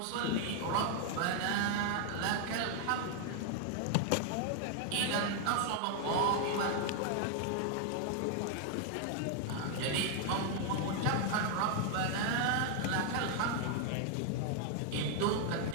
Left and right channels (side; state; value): both; different; correlation 0.00